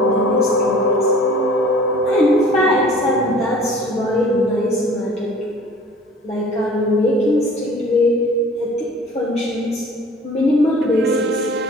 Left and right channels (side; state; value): both; normal; correlation 0.48